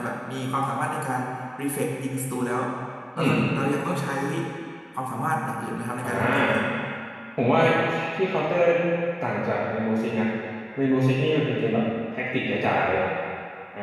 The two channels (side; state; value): both; identical; correlation 1.00